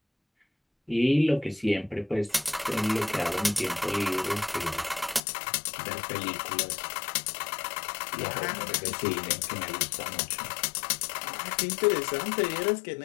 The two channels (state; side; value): drops out; right; at 5.2 s